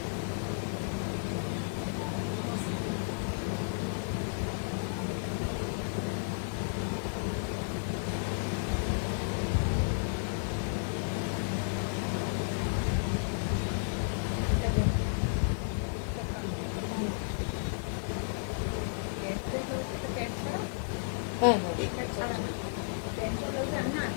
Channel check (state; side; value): silent; right; digital silence